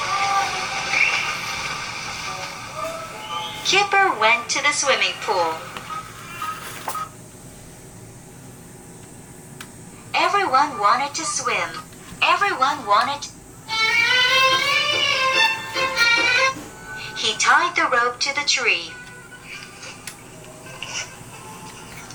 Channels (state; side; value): identical; both; correlation 1.00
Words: Kipper went to the swimming pool. Everyone wanted to swim. Everyone wanted. He tied the rope to the tree.